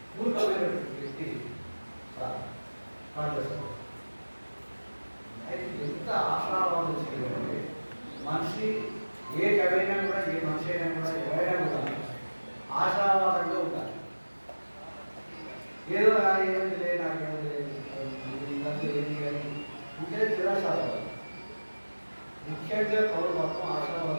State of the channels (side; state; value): both; inverted; correlation -1.00